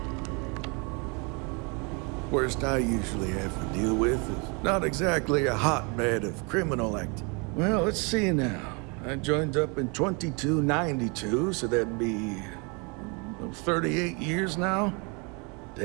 Worst I usually have to deal with is not exactly a hotbed of criminal activity. Well, let's see now. I joined up in 2292, so that'd be 38 years now?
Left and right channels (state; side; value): quieter; left; 32.0 dB